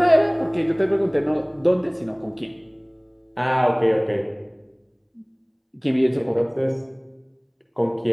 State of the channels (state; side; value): identical; both; correlation 1.00